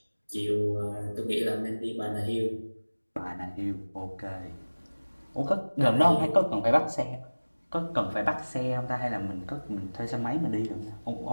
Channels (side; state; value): both; inverted; correlation -1.00